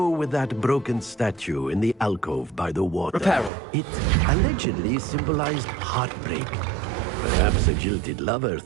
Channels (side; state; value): left; drops out; at 3.5 s